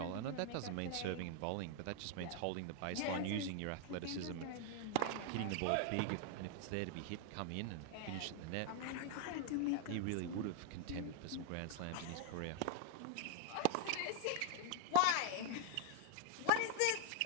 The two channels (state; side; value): different; both; correlation 0.00